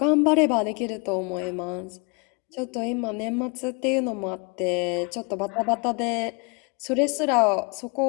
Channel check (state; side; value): quieter; right; 32.8 dB